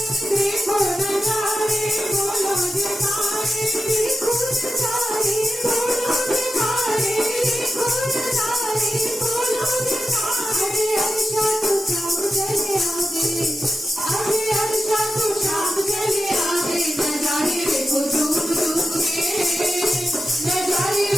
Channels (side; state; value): both; normal; correlation 0.90